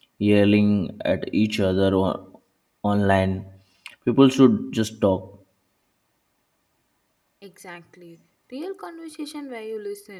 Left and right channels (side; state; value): both; identical; correlation 1.00